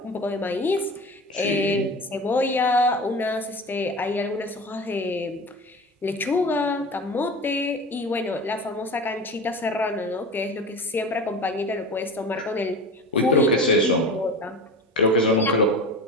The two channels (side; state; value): both; normal; correlation 0.33